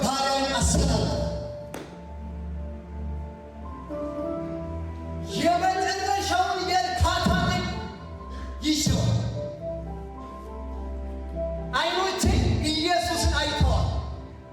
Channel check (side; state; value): both; identical; correlation 1.00